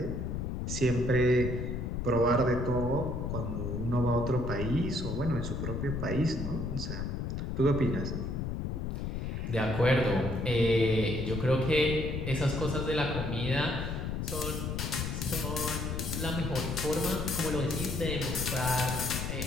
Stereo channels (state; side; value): noise; left; rumble, 3 dB below the sound